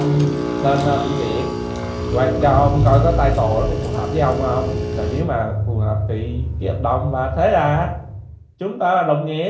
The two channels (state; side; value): identical; both; correlation 1.00